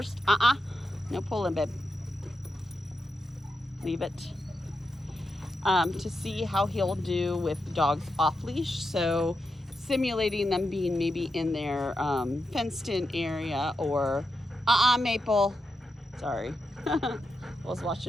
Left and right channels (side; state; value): both; normal; correlation 0.87